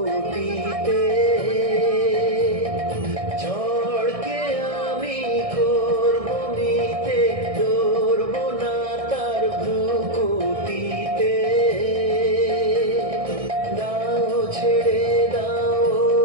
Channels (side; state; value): left; late; 1.6 ms